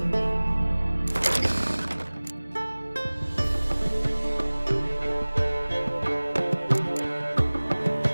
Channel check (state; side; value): inverted; both; correlation -1.00